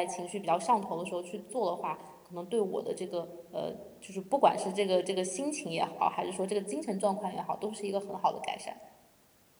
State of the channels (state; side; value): identical; both; correlation 1.00